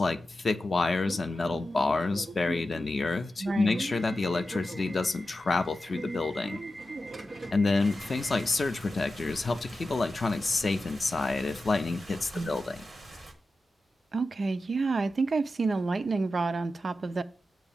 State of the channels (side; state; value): both; normal; correlation 0.92